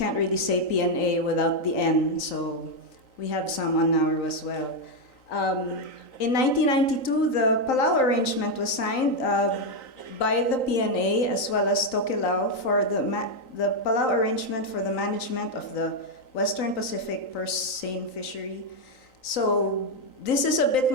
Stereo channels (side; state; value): right; late; 3.9 ms